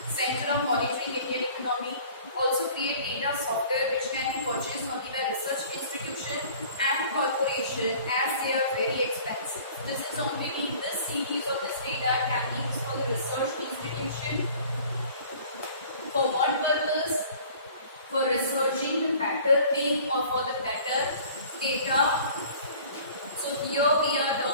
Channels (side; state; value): both; inverted; correlation -0.49